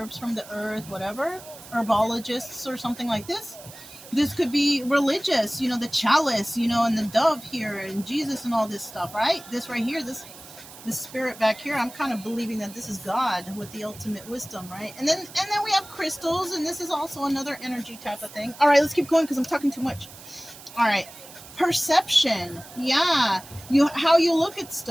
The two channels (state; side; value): noise; right; hiss, 18 dB below the sound